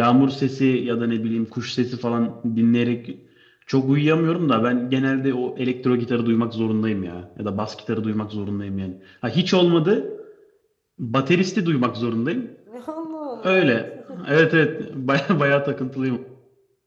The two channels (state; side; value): identical; both; correlation 1.00